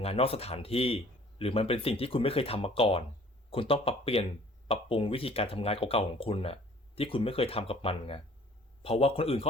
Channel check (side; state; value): both; normal; correlation 0.54